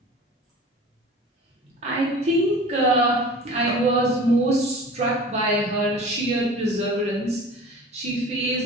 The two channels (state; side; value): normal; both; correlation 0.40